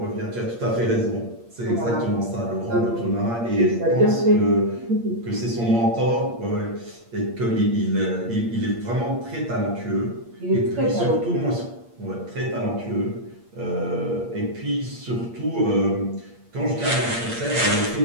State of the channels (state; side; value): late; left; 8.6 ms